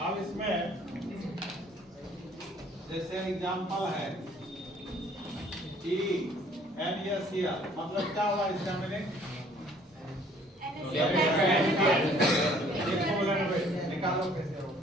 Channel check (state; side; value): normal; both; correlation 0.58